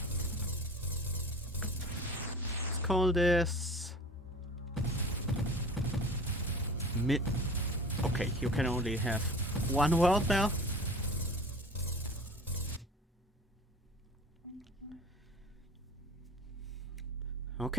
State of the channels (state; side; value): normal; both; correlation 0.41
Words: Let's call this mid. Okay, you can only have one world now.